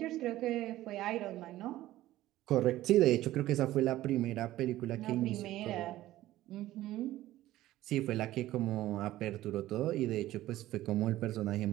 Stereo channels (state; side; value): quieter; left; 15.2 dB